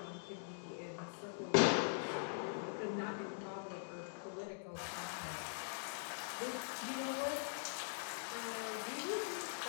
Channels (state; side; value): silent; right; digital silence